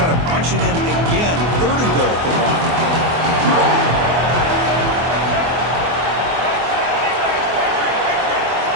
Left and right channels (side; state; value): left; late; 24 ms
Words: to punch it in again. 3rd and goal for 1.